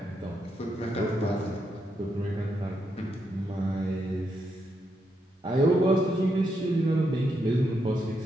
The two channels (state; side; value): normal; both; correlation 0.81